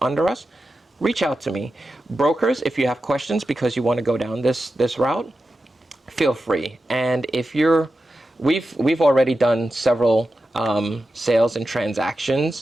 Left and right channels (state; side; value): normal; both; correlation 0.91